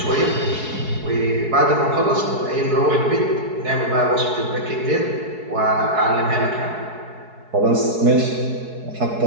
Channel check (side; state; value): left; late; 4.7 ms